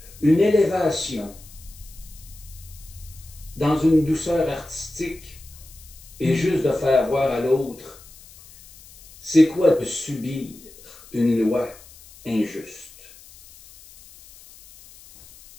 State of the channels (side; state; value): left; noise; hiss, 21 dB below the sound